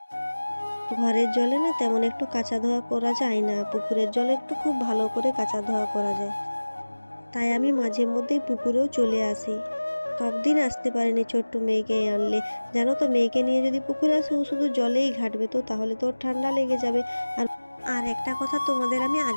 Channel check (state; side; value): inverted; both; correlation -1.00